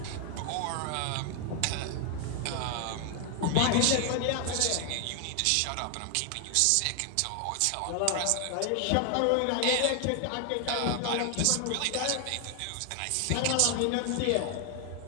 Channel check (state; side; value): different; both; correlation 0.00